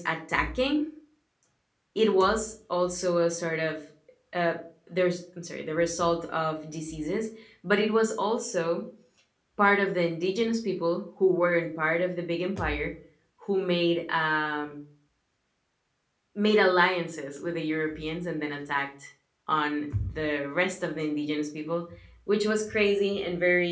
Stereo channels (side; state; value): both; identical; correlation 1.00